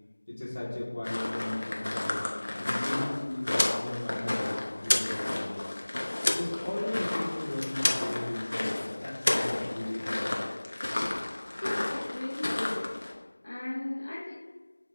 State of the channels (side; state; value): both; inverted; correlation -1.00